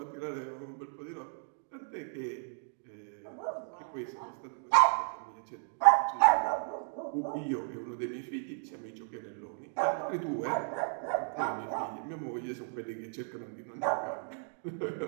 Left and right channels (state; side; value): silent; left; 55 dB below the other